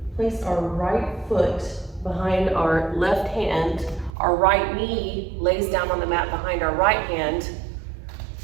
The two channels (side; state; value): left; drops out; at 4.1 s